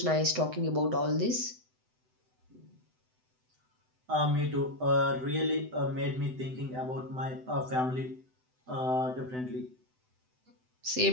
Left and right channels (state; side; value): late; left; 7.9 ms